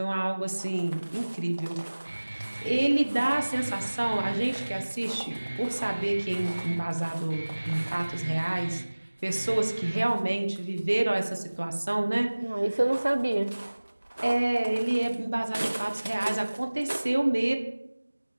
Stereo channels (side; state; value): both; inverted; correlation -1.00